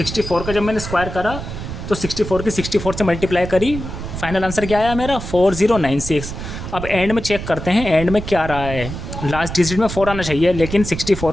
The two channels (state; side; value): noise; right; rumble, 8 dB below the sound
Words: का जब मैंने स्क्वायर करा तो 64 की 64 से मल्टीप्लाई करी, फाइनल आंसर क्या आया मेरा 4096। अब एंड में चेक करते हैं एंड में क्या रहा है। लास्ट डिजिट में 4 आना चाहिए, लेकिन